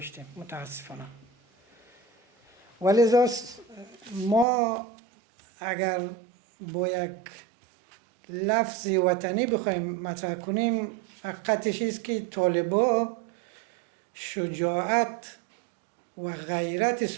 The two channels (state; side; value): drops out; left; at 4.5 s